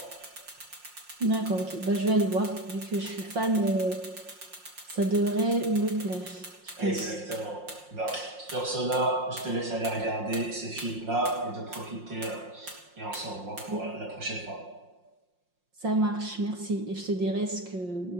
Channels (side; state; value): left; late; 5.6 ms